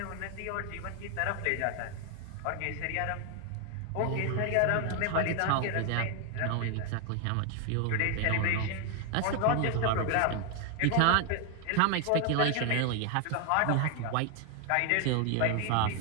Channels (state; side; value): different; both; correlation 0.00